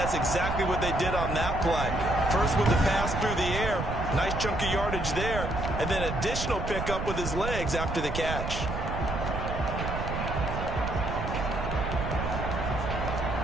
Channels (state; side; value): noise; right; rumble, 4 dB below the sound